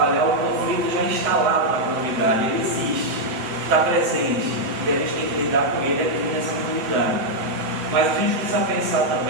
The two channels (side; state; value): left; late; 7.6 ms